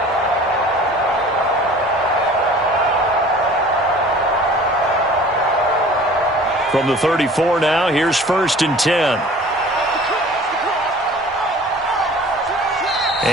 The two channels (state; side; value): normal; both; correlation 0.46